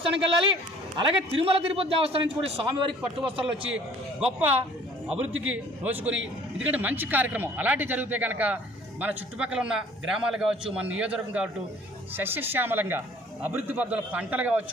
వెళ్ళాలి. అలాగే తిరుమల తిరుపతి దేవస్థానం నుంచి కూడా స్వామివారికి పట్టు వస్త్రాలు వచ్చి గొప్ప అభివృద్ధికి నోచుకొని, ఎందుకంటే మంచి కార్యక్రమం అలాంటివి జరిగితే కనుక మన చుట్టుపక్కల ఉన్న గ్రామాలు కావచ్చు, మన నియోజకవర్గం కావచ్చు సస్యశ్యామలంగా అభివృద్ధి పద్ధతుల పంటలు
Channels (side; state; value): both; normal; correlation 0.53